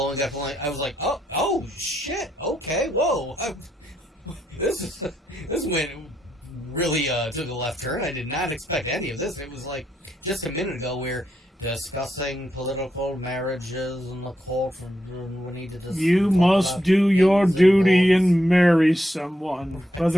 up. I was like, oh, shit, okay, whoa. This went really took a left turn. I did not expect any of this. It was like, just a minute ago, we're discussing political marriages in the court. We need to You must do your duty and marry someone,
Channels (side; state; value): both; normal; correlation 0.80